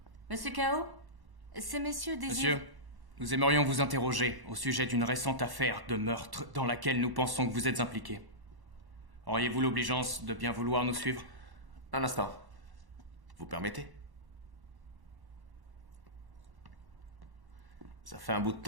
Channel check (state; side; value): late; left; 1.1 ms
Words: Monsieur Kao, ces messieurs désirent... Monsieur, nous aimerions vous interroger au sujet d'une récente affaire de meurtre dans laquelle nous pensons que vous êtes impliqué. Auriez-vous l'obligeance de bien vouloir nous suivre? Un instant. Vous permettez? Ça fait un bout de